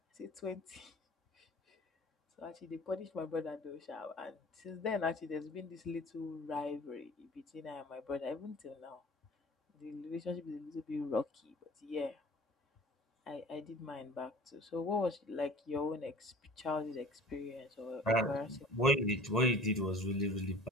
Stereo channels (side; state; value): both; normal; correlation 0.45